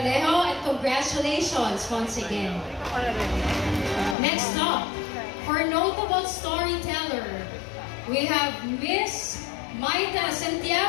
and congratulations once again. Next up, for notable storyteller, we have Miss Maita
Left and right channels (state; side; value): drops out; right; at 4.2 s